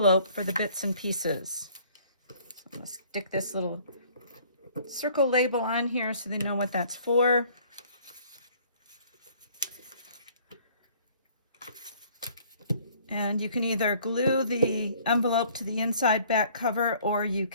for the bits and pieces. So I'm going to stick this little circle label on here so they know what that's for. And you can either glue the envelope to the inside back cover, or you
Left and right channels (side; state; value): both; inverted; correlation -0.56